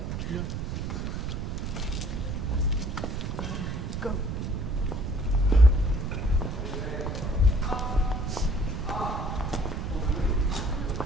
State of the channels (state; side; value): noise; right; rumble, 3 dB below the sound